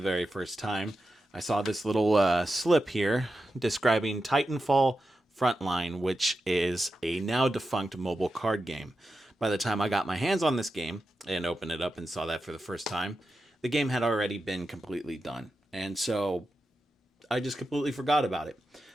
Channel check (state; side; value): normal; both; correlation 0.90